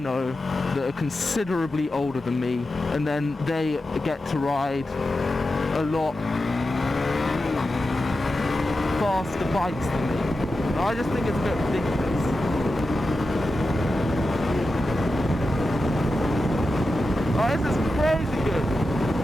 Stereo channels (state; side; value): normal; both; correlation 0.91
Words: that are considerably older than me, and then they get to ride a lot faster bikes than me. I just think it's a bit ridiculous. Oh, this is crazy good.